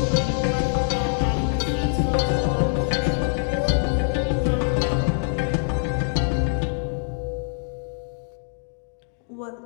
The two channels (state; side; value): silent; right; 62 dB below the other